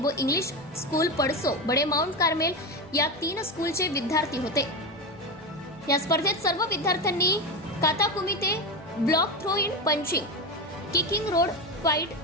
इंग्लिश स्कूल पडसो बडे माउंट कार्मेल या 3 स्कूलचे विद्यार्थी होते। या स्पर्धेत सर्व विद्यार्थ्यांनी kata kumite, block throw in punching, kicking road fight,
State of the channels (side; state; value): both; normal; correlation 0.17